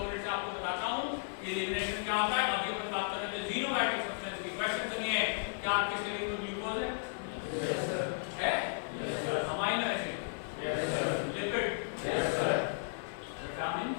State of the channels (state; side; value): silent; right; digital silence